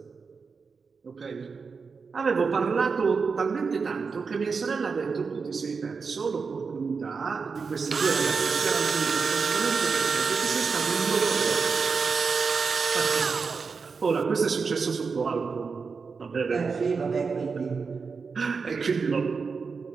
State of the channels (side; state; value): left; quieter; 5.1 dB